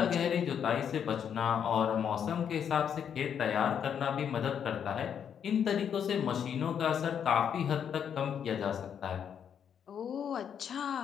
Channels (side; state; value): right; quieter; 8.2 dB